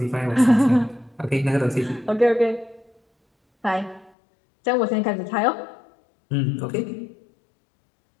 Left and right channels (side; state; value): right; drops out; at 4.1 s